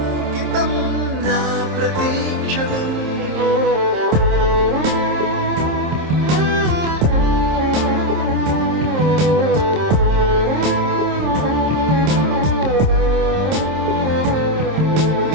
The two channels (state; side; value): late; left; 26 ms